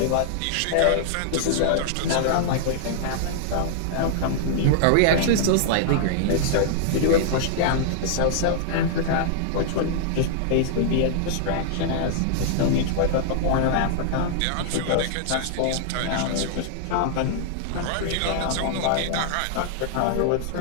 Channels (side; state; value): both; different; correlation -0.01